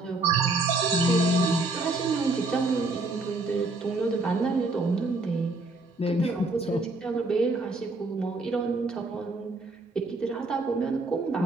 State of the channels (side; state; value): left; quieter; 3.1 dB